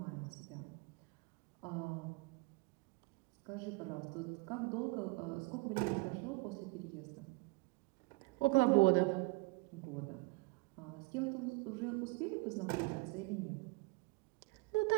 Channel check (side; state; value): left; quieter; 24.3 dB